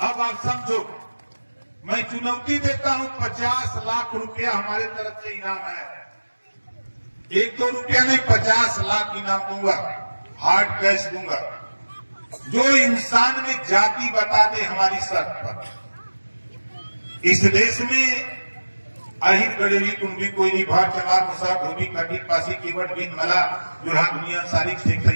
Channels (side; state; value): both; inverted; correlation -1.00